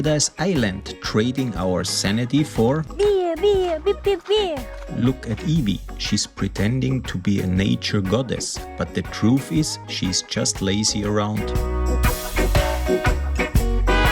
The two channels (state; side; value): identical; both; correlation 1.00